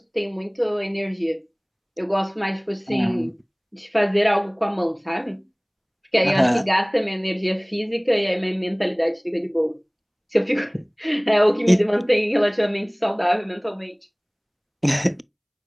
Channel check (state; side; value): identical; both; correlation 1.00